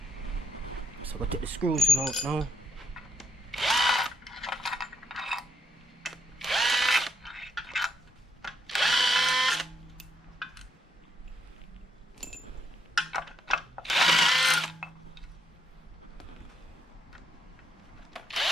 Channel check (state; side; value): normal; both; correlation 0.74